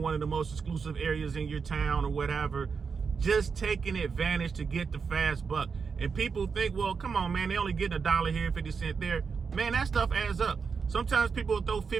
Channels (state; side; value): quieter; left; 5.6 dB